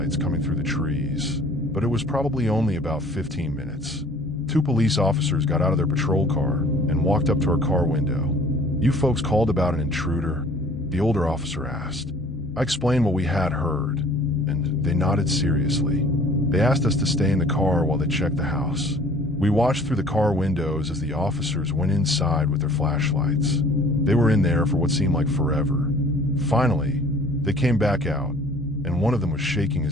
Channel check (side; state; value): both; normal; correlation 0.51